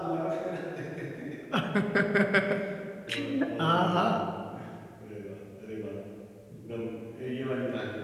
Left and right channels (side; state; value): both; identical; correlation 1.00